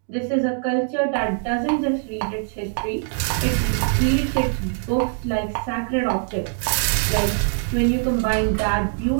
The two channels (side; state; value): left; silent; 64 dB below the other